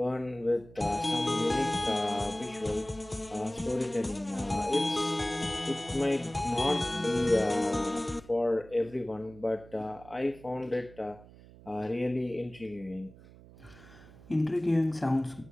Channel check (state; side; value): noise; right; hum, 21 dB below the sound